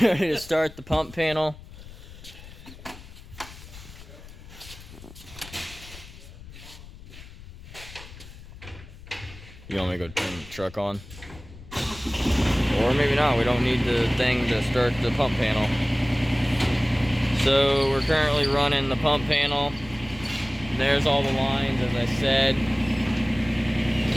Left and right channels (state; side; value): noise; left; rumble, 17 dB below the sound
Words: ready to start the pump panel. You want me to go turn the truck on? Or maybe not, we don't need the thing to start the pump panel. So we're currently running the pump panel. There's all the lines, as I said.